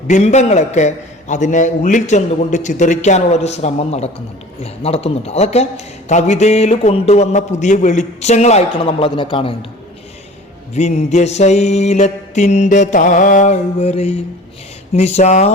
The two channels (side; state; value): both; normal; correlation 0.43